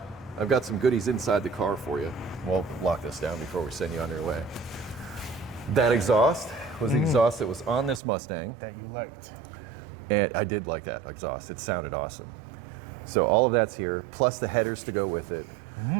I've got some goodies inside the car for you. We'll lock this down before we send you on your way. That exhaust was the exhaust that was on this Mustang. That you liked. And I did like that exhaust. It sounded awesome. So all of that's here, plus the headers to go with it,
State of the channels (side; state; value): left; drops out; at 8.0 s